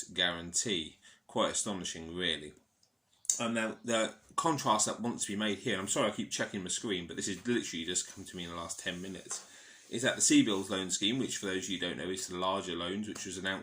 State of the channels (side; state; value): both; identical; correlation 1.00